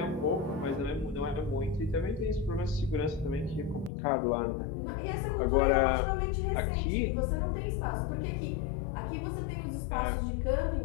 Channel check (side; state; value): right; drops out; at 3.9 s